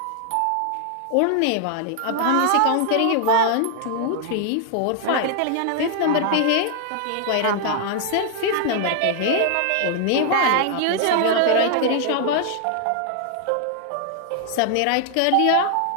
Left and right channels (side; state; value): both; different; correlation 0.00